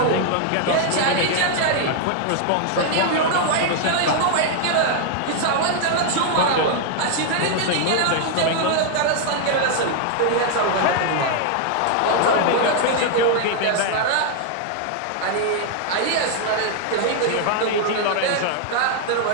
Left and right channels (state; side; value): different; both; correlation 0.00